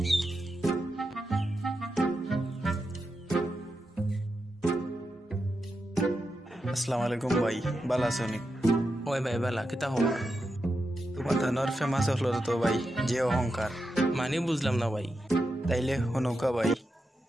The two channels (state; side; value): normal; both; correlation 0.87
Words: আসসালামু আলাইকুম ভাই, ভালো আছো নি? ওই ভাই বালা কিতা খবর? তোমার ধানর ফেমাস হলো তো ভাই, যে অহংকার। মানে বুঝলাম না ভাই। তাইলে হনুকা ভাই,